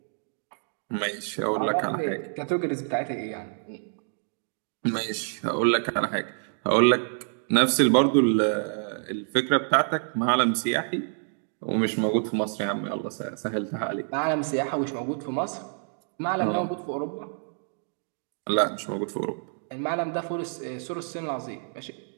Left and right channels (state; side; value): silent; left; 60 dB below the other